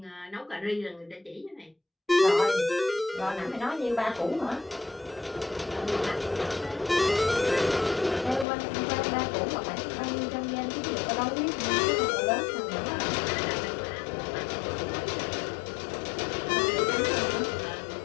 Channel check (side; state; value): right; drops out; at 8.5 s